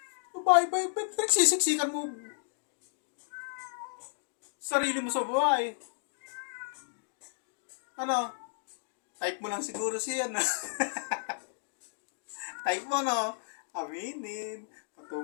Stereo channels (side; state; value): right; silent; digital silence